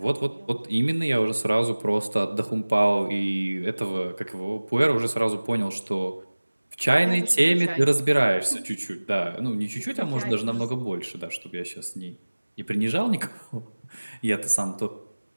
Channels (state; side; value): inverted; both; correlation -1.00